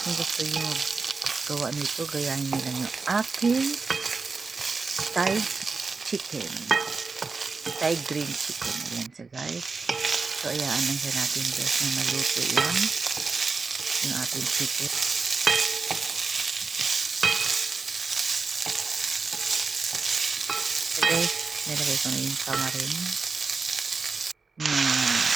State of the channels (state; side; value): quieter; left; 4.4 dB